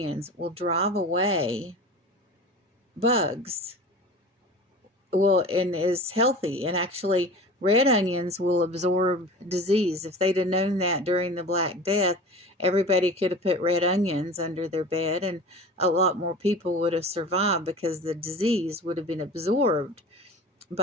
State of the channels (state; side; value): normal; both; correlation 0.36